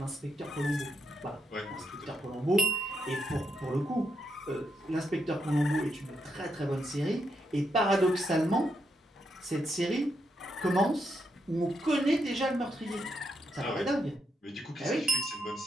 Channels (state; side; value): normal; both; correlation 0.79